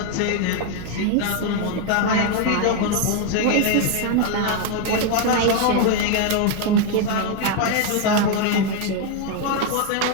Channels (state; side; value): different; both; correlation 0.01